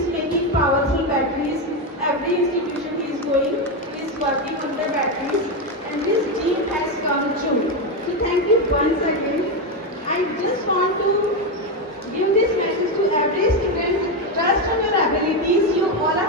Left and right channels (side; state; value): both; normal; correlation 0.09